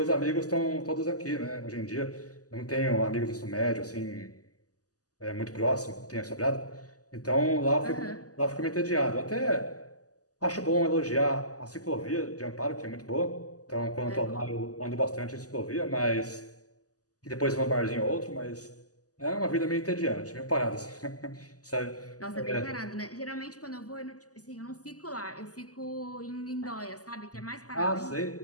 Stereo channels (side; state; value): right; late; 0.67 ms